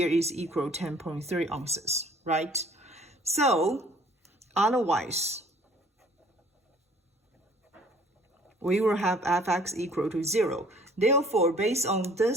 is equal 10.3 ounces, right? So otherwise, we will have fx equal to 0. Therefore, based on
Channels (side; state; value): both; normal; correlation 0.56